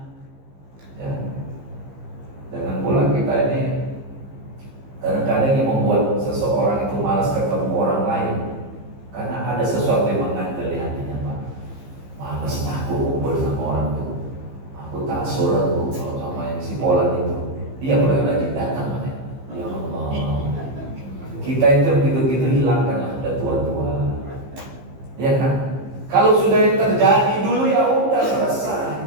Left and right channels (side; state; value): left; late; 15 ms